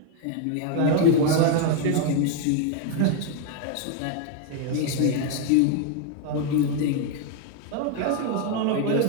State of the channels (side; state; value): both; different; correlation 0.01